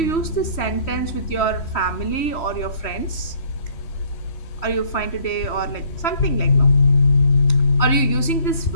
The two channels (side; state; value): right; late; 3.1 ms